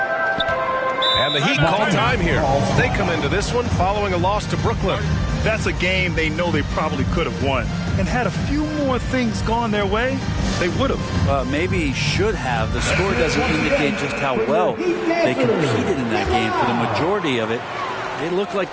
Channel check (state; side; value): identical; both; correlation 1.00